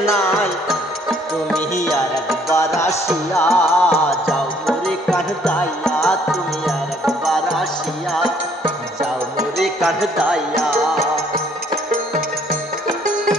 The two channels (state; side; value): normal; both; correlation 0.63